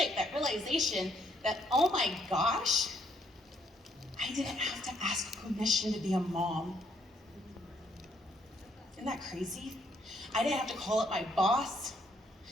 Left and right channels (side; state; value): both; normal; correlation 0.70